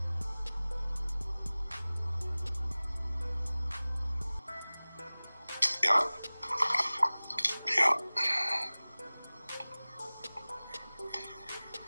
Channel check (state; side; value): inverted; both; correlation -0.99